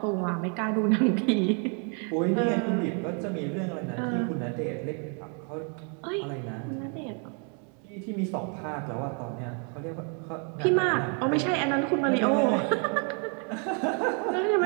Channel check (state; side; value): quieter; left; 39.4 dB